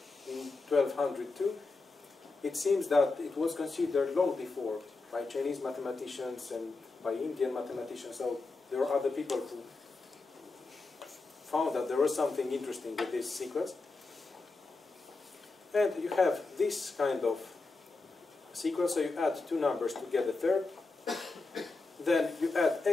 in 1202. It seems that it was considered long before by Chinese mathematicians and by Indian mathematicians. So there are other people who found that there was something interesting with this sequence. And you have this kind of sequence, so you add 2 numbers to get a third. Then you add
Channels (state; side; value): quieter; right; 3.6 dB